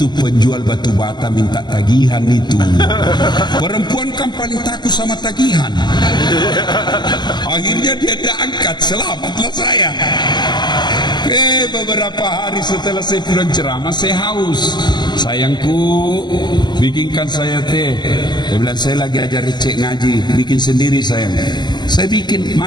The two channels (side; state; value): right; late; 0.21 ms